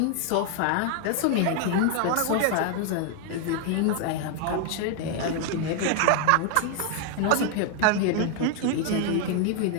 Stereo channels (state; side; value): different; both; correlation 0.00